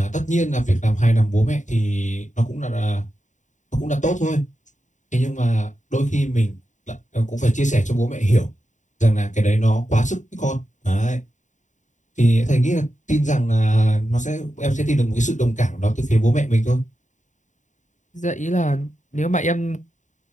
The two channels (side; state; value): right; late; 0.36 ms